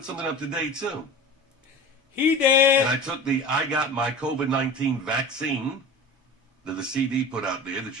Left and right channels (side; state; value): both; normal; correlation 0.35